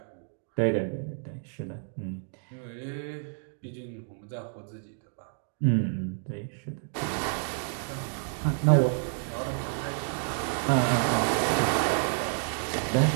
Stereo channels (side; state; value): left; silent; 57 dB below the other